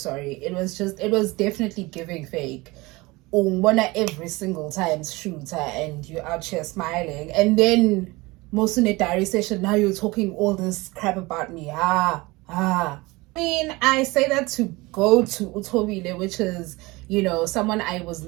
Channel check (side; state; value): left; quieter; 22.7 dB